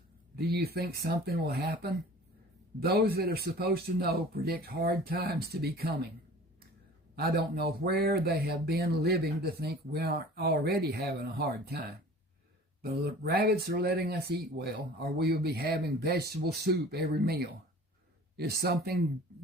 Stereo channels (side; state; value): both; normal; correlation 0.44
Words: Do you think something will happen? Those that are supposed to know predict hard times to be coming. I don't know where they have been living to think we aren't already having a hard time. The rabbits are letting us eat well, or we will be having vegetable soup every meal. If something